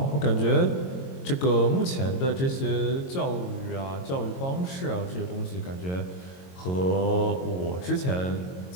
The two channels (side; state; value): right; late; 22 ms